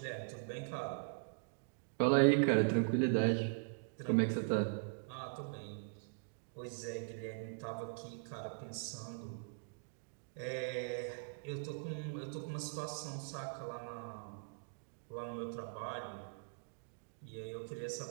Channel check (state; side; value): silent; left; digital silence